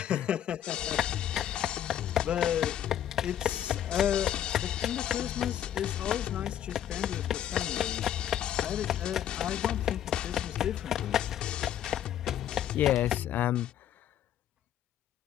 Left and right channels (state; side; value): quieter; right; 10.6 dB